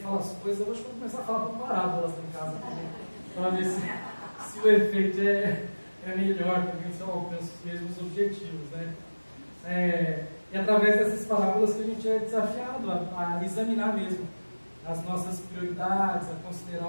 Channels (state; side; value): inverted; both; correlation -1.00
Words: as coisas. Eu acho que vou começar a falar por parábolas lá em casa também, para ver se o efeito é melhor, também se eu alcanço os mesmos objetivos, né? E através dessas parábolas que a gente é desafiado a examinar mesmo as nossas prioridades, a